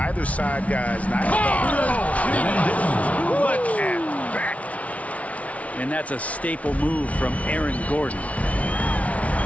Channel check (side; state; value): right; late; 0.066 ms